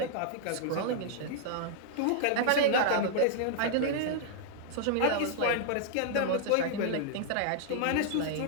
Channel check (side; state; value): both; different; correlation -0.01